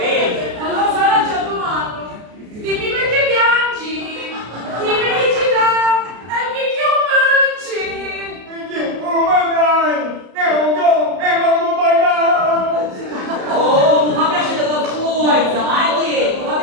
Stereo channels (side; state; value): left; late; 33 ms